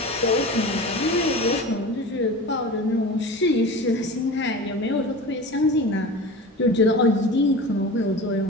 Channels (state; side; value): normal; both; correlation 0.33